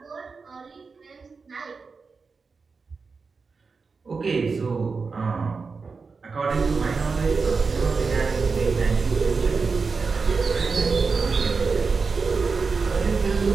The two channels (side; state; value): left; quieter; 4.7 dB